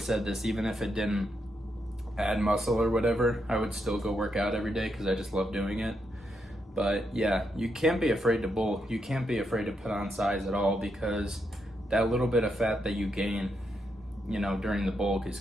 said this, even if it didn't add muscle or whatever, I would still go work out every day because I just love doing it. But yeah, you can't be afraid to bulk. You can't be afraid to put on size at all, because that little bit of fat that you gain, you know, during the bulk is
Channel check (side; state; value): both; normal; correlation 0.81